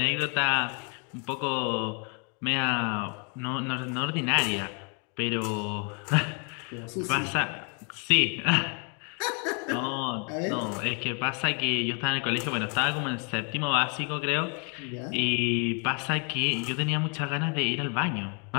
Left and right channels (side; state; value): right; quieter; 36.9 dB